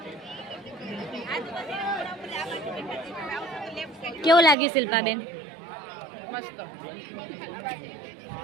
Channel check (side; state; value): left; drops out; at 4.5 s